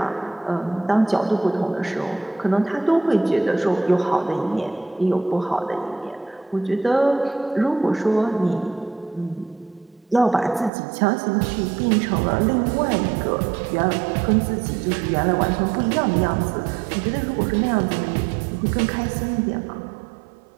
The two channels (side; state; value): left; drops out; at 10.7 s